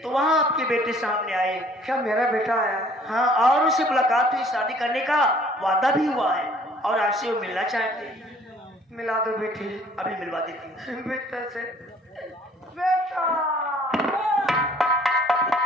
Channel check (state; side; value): normal; both; correlation 0.56